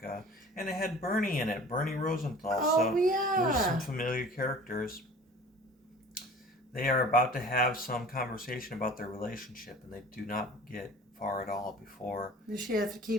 and it had Bernie in it, Bernie Rosenthal. Oh, yeah. There's some familiar characters. They are about to have some conversation about their relationship, and they do not get far at all before... Does she have to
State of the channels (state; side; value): normal; both; correlation 0.44